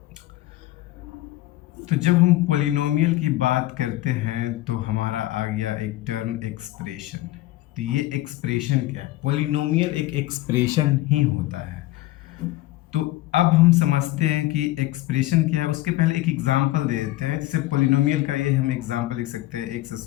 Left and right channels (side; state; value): right; quieter; 16.7 dB